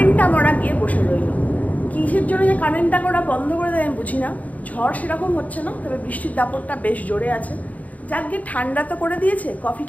মরা গিয়ে বসে রইল। কিসের জন্য যে কারেন্টটা করা বন্ধ করে দেয় আমি বুঝি না। ঝড় সেরকম হচ্ছে না, তবে বৃষ্টির দাপটটা বেশ জোরে আছে। যাক গিয়ে ঠান্ডা তো করে দিয়েছে,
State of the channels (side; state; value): right; late; 0.072 ms